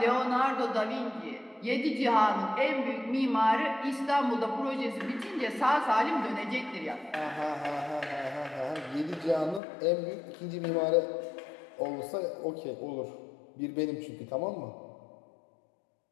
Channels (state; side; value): drops out; right; at 9.6 s